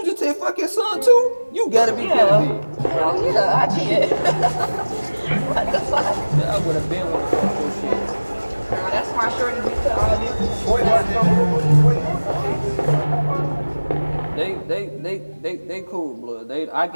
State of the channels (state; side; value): inverted; both; correlation -1.00